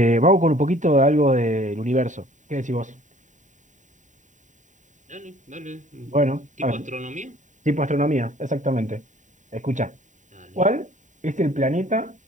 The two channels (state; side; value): late; left; 0.36 ms